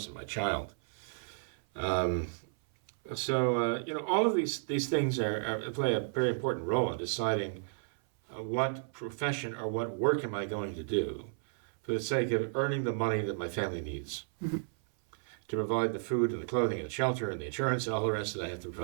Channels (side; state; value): left; silent; 56 dB below the other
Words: and my child? All of these things play a very important role in deciding what profession or what work am I going to do for the sake of earning the money that my family needs to provide the food and the clothing and the shelter and the insurance and all the rest that I have to